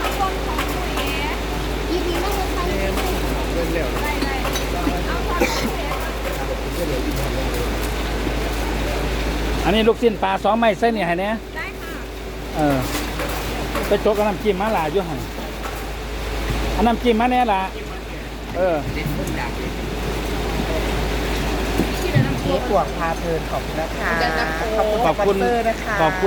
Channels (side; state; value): both; identical; correlation 1.00